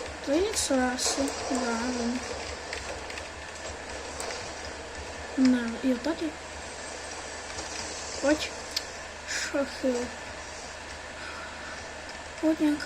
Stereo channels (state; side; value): noise; right; hum, 23 dB below the sound